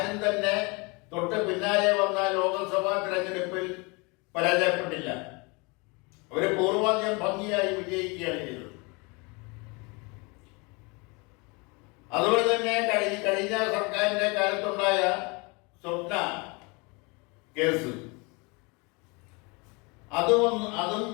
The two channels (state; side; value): quieter; right; 28.7 dB